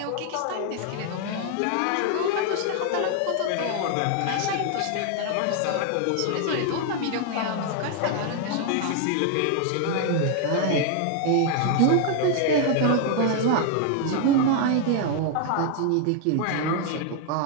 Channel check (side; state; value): both; different; correlation 0.00